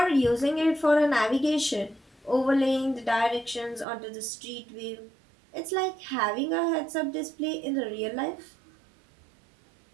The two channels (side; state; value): left; drops out; at 3.9 s